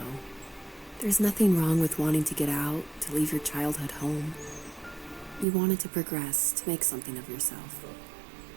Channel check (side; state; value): left; drops out; at 5.5 s